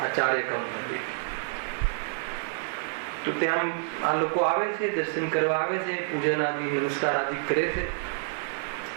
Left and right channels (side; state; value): left; silent; digital silence